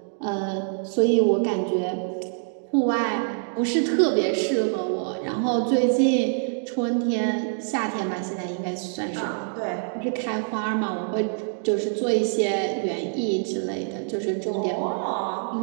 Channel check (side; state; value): left; silent; digital silence